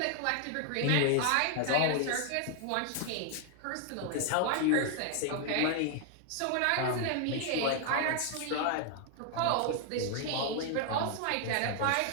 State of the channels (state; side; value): different; both; correlation 0.00